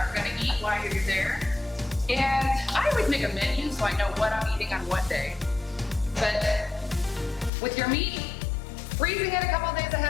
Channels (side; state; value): right; drops out; at 7.5 s